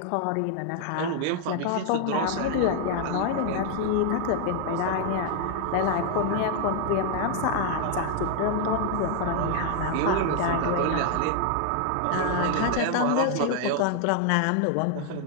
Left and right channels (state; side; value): different; both; correlation 0.00